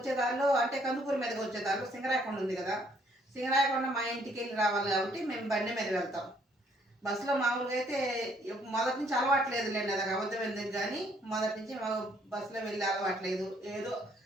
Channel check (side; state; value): both; normal; correlation 0.66